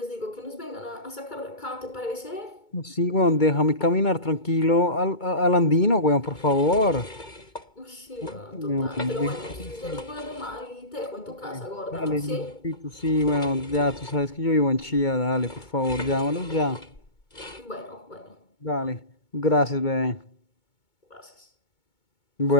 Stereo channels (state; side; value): late; right; 2.2 ms